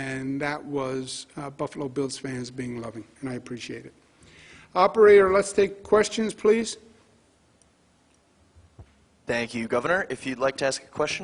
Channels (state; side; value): identical; both; correlation 1.00